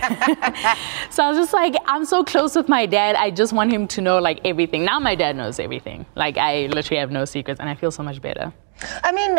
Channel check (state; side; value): silent; left; 60 dB below the other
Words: So I was just like, I'm so close with my dad. I just want him to know like everything. Now my dad knows everything. Like, I literally have no secrets, and I feel so much better. I mean,